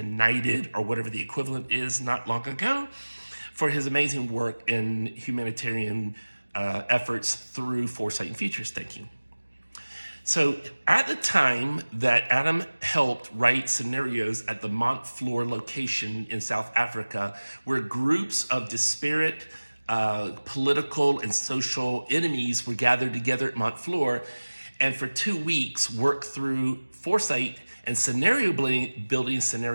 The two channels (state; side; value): inverted; both; correlation -1.00